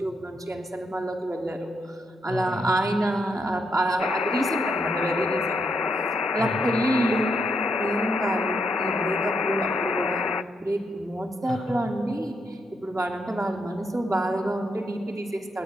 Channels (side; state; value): both; normal; correlation 0.79